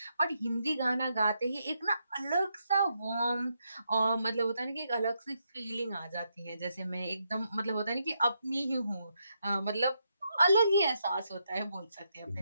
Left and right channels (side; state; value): both; inverted; correlation -0.81